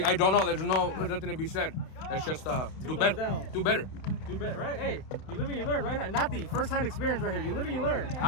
I don't know. There's nothing to be said. Let's just do better. Do better. Do better, right? Hey, you live and you learn, right? Nati, first-hand experience right here. You live and you learn.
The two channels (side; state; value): right; late; 31 ms